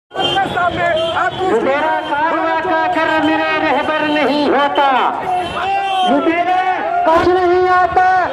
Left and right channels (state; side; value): identical; both; correlation 1.00